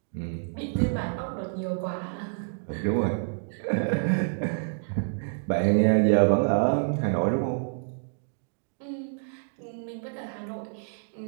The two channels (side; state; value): left; silent; digital silence